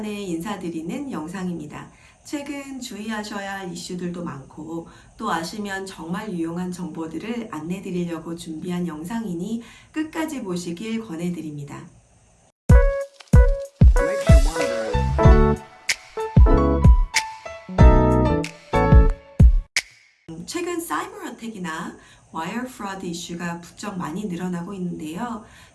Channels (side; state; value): both; identical; correlation 1.00